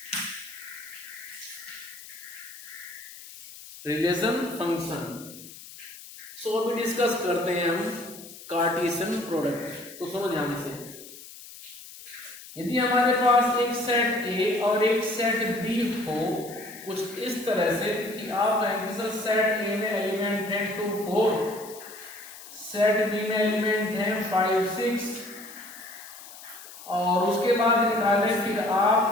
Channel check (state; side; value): noise; left; hiss, 16 dB below the sound